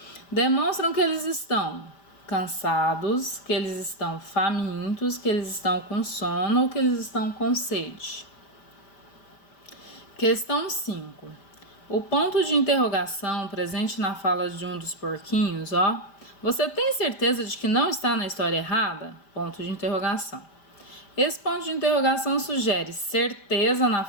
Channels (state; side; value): late; right; 5.0 ms